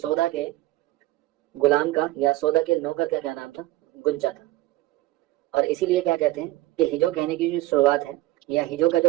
کے غلام کا یا سودا کے نوکر کا کیا نام تھا؟ گنجا تھا. اور اسی لیے کیا کہتے ہیں کہ ہجو کہنے کی جو شروعات ہے یا ہجو کا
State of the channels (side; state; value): left; quieter; 17.2 dB